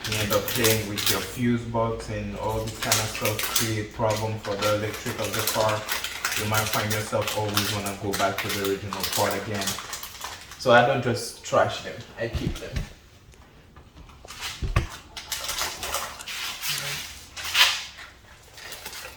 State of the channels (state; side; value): identical; both; correlation 1.00